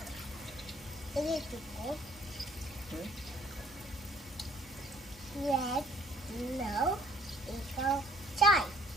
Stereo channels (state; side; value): normal; both; correlation 0.58